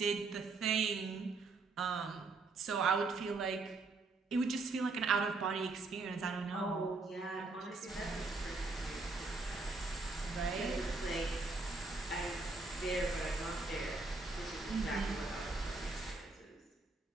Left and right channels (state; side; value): quieter; left; 3.7 dB